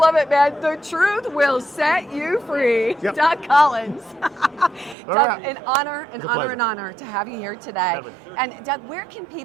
it, man. The truth will set you free. Yep. Doug Collins. Doug, right. an honor to have you here today. Definitely. And Doug, where can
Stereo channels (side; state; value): left; drops out; at 5.0 s